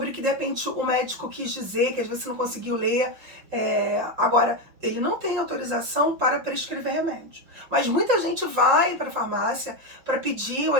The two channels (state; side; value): late; left; 5.7 ms